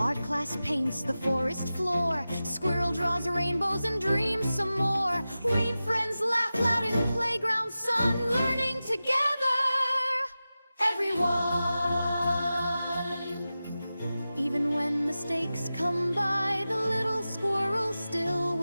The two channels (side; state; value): both; inverted; correlation -0.94